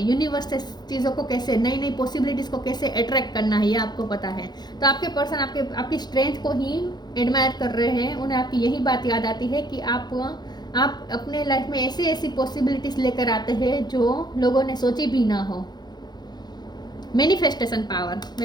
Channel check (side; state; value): right; late; 0.20 ms